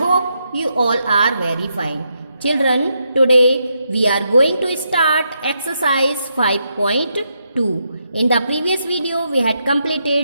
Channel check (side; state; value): both; inverted; correlation -0.81